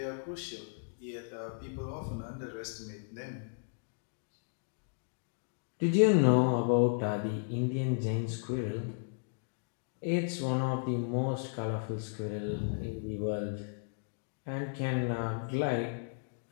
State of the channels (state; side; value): silent; right; digital silence